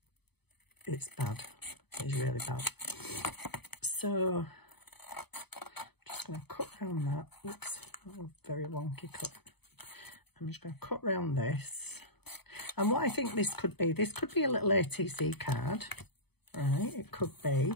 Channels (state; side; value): late; right; 0.98 ms